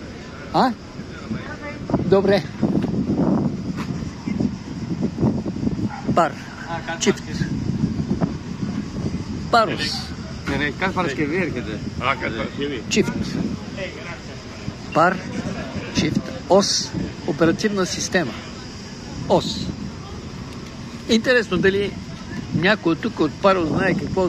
А? Добре. Пар. Чифт. Парус. Чифт. Пар. Чифт. Ос. Оперативна система. Ос. Интересно дали някой тук от Парус знае какво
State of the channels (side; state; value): both; identical; correlation 1.00